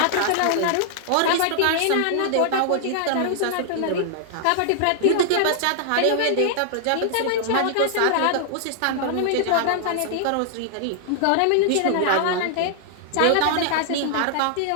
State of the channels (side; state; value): both; different; correlation -0.01